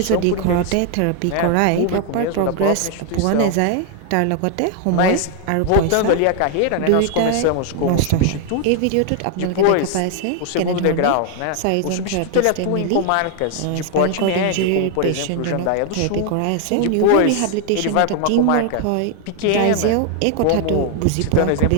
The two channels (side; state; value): both; different; correlation 0.00